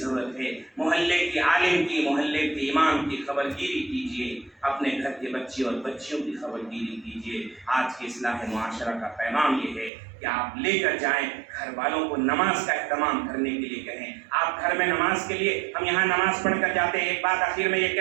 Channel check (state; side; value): drops out; left; at 9.9 s